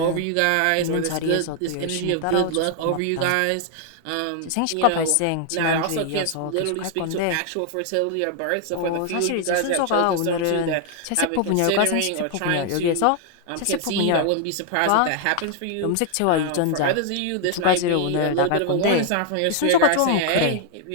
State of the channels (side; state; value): both; different; correlation 0.00